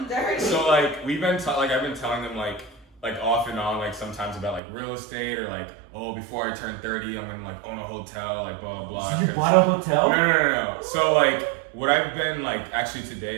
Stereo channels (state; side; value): drops out; left; at 4.6 s